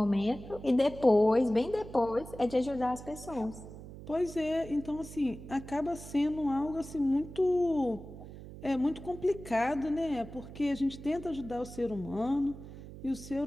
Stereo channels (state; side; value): noise; right; hum, 14 dB below the sound